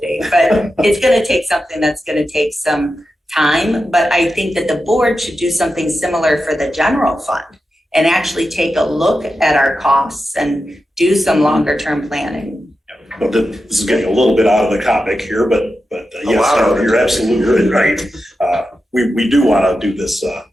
But it's going to take something that's going to take some time. But I think that the board should do something similar for the general fund and actually take a look at our costs and do some longer term planning. But this is getting a little bit out of the topic here, but yes, you're absolutely right. We do want to do this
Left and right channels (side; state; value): both; normal; correlation 0.90